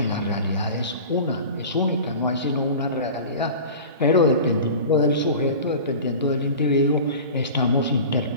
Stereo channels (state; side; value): inverted; both; correlation -0.36